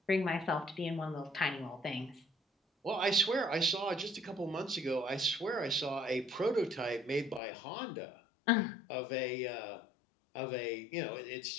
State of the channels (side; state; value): right; drops out; at 7.4 s